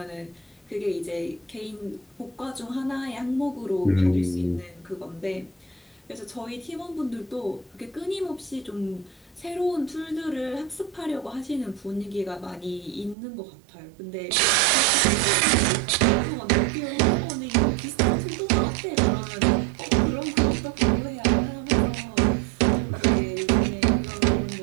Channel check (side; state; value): left; drops out; at 13.2 s